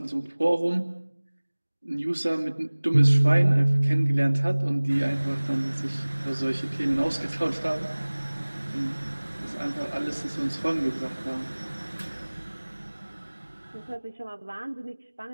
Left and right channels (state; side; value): inverted; both; correlation -1.00